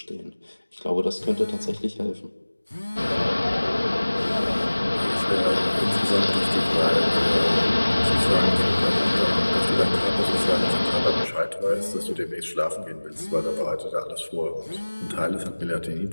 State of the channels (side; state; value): both; inverted; correlation -1.00